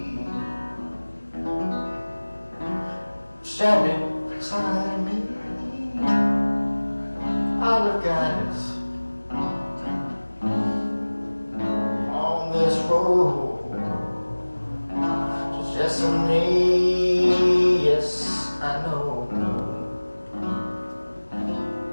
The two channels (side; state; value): both; inverted; correlation -1.00